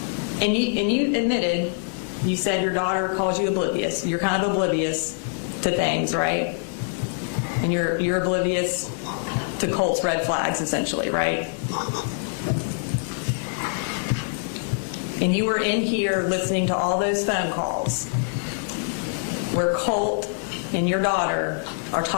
And you admitted, you said your daughter calls you oblivious. You're kind of oblivious to things, right? And you're oblivious to Colt's red flags, essentially, right? And you were in here listening to all those phone calls where Colt and your daughter are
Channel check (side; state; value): right; silent; 57 dB below the other